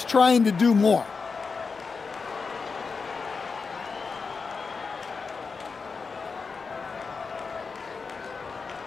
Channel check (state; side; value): quieter; right; 4.9 dB